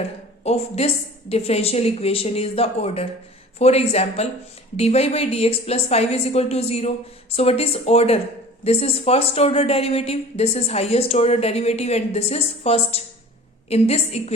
of this differential equation is the order. For example, dy by dx plus 5 is equal to 0. So what is order? This is first order derivative, this is highest order derivative, and this is first. In this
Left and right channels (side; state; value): both; normal; correlation 0.43